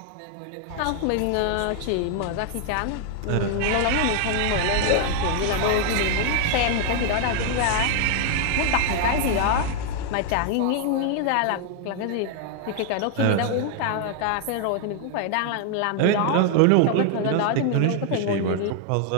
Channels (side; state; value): both; different; correlation 0.00